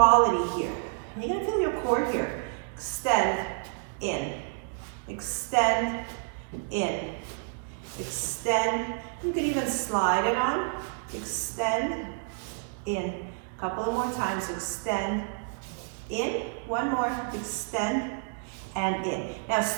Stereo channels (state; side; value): silent; left; 58 dB below the other